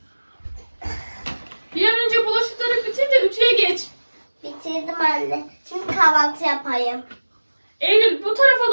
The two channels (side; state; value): both; inverted; correlation -1.00